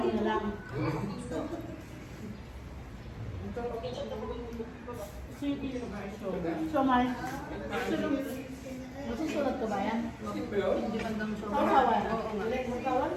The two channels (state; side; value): identical; both; correlation 1.00